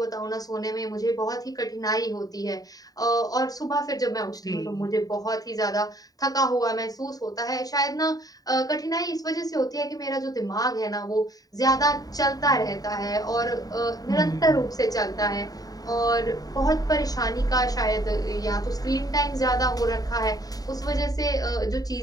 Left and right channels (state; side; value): late; right; 0.18 ms